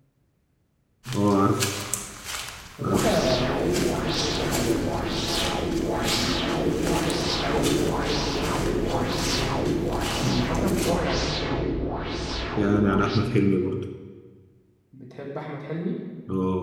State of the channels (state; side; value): identical; both; correlation 1.00